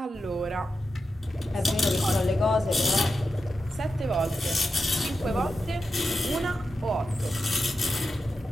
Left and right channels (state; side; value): normal; both; correlation 0.89